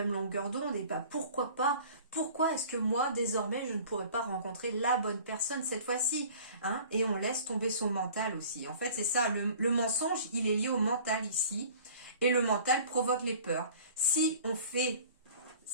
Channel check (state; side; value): inverted; both; correlation -0.47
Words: longueur d'onde, et pourquoi pas, pourquoi est-ce que moi, désormais, je ne pourrais pas rencontrer la bonne personne cette fois-ci, et on laisse tomber son mental aussi. En fait, c'est ça, le mensonge, il est lié au mental ici, et le mental provoque les peurs. Si on